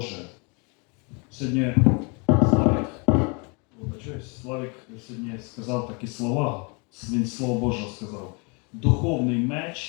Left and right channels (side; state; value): right; quieter; 32.6 dB